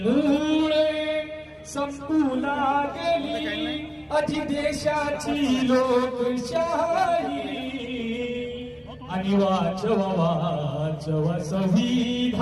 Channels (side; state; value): both; identical; correlation 1.00